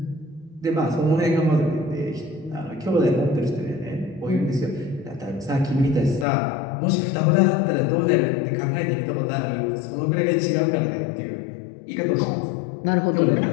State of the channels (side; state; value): right; drops out; at 6.2 s